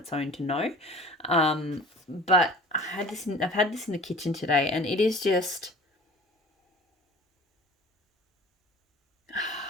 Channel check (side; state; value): both; normal; correlation 0.45